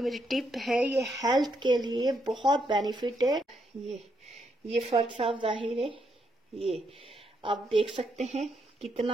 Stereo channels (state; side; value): normal; both; correlation 0.77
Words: मेरी टिप है ये हेल्थ के लिए बहुत बेनिफिट है। ये फर्क साफ जाहिर है, ये आप देख सकते हैं